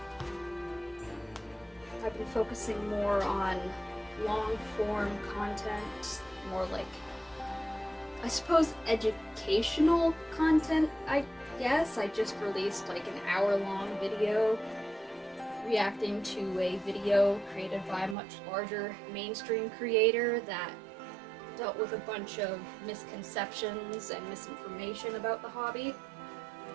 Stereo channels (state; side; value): drops out; left; at 18.2 s